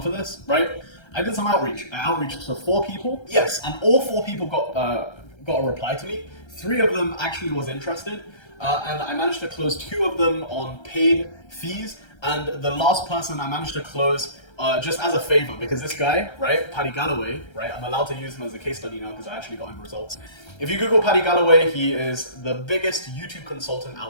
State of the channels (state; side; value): late; right; 1.3 ms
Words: for this, right? I did some outreach. I outreached to 4 people. Yes, and all 4 people got a reply to me. 3 of them actually was interested, and I managed to close 2 of them on paid fees. And the last person I managed to close just as a favor, because this guy, right, Paddy Galloway, right, I'm allowed to use him as a case study now because I actually got him results. If you Google Paddy Galloway, he is the biggest YouTube consultant